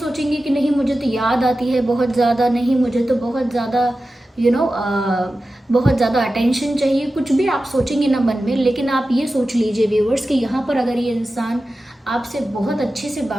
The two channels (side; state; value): both; normal; correlation 0.94